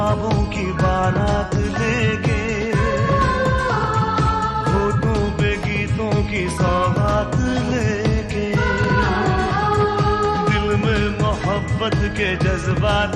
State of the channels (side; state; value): both; identical; correlation 1.00